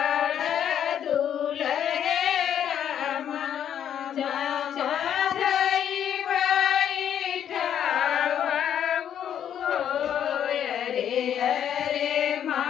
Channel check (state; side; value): quieter; right; 9.5 dB